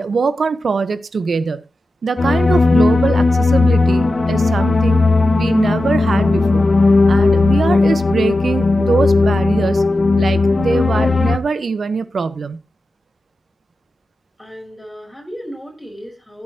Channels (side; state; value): both; normal; correlation 0.92